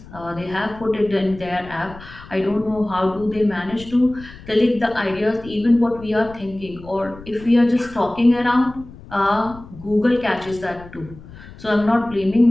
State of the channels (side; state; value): left; noise; rumble, 18 dB below the sound